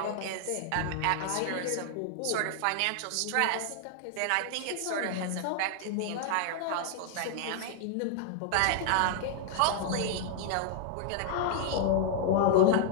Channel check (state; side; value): different; both; correlation 0.00